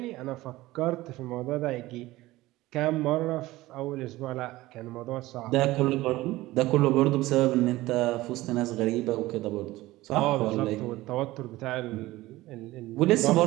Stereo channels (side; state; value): left; quieter; 18.0 dB